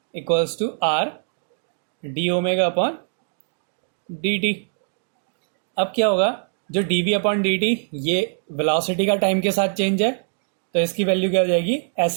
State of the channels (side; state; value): left; silent; digital silence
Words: equals to r d omega upon d t. अब क्या होगा, जो d v upon d t ये वेलोसिटी का टाइम के साथ चेंज है, तो इसकी वैल्यू क्या हो जाएगी,